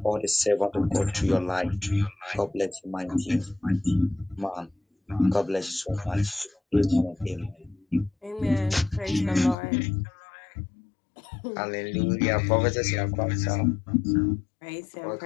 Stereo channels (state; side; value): drops out; right; at 9.6 s